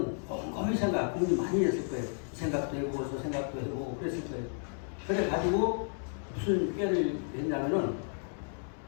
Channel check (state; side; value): silent; right; 56 dB below the other